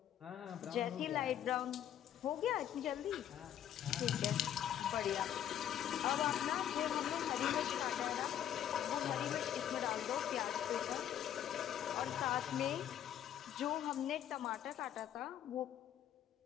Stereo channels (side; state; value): right; quieter; 10.5 dB